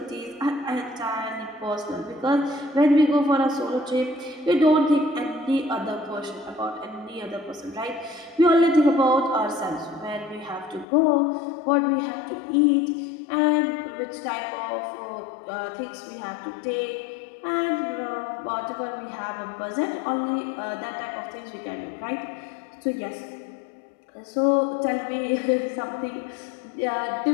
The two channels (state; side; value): drops out; right; at 10.9 s